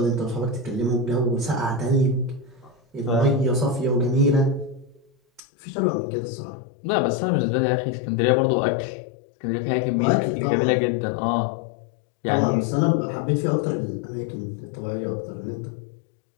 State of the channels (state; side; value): drops out; right; at 5.4 s